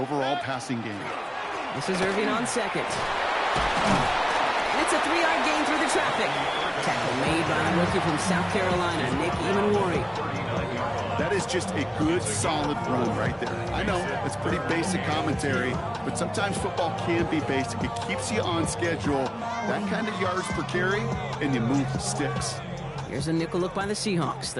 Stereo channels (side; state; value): both; identical; correlation 1.00